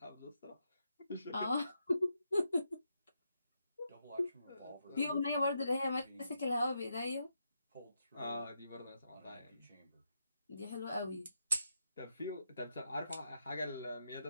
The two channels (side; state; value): both; inverted; correlation -0.82